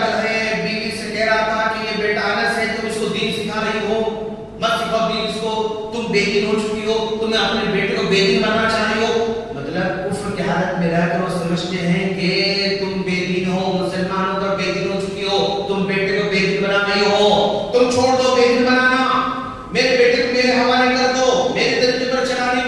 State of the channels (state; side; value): identical; both; correlation 1.00